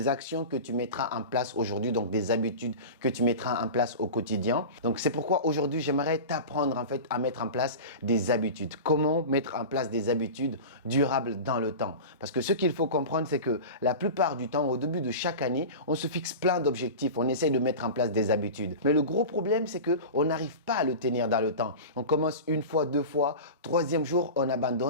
actions que tu mettras en place aujourd'hui, donc des habitudes que tu mettras en place au quotidien? Donc c'est pourquoi aujourd'hui j'aimerais t'apprendre en fait à mettre en place des habitudes. Comment mettre en place des habitudes durables dans le temps? Parce que ce qu'il faut comprendre, c'est que la plupart du temps, au début de chaque année, on se fixe plein d'objectifs, on essaye de mettre en place des habitudes. Mais le gros problème, c'est qu'on n'arrive pas à le tenir dans le temps. On commence une fois, deux fois, troisième jour, on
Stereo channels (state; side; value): inverted; both; correlation -0.30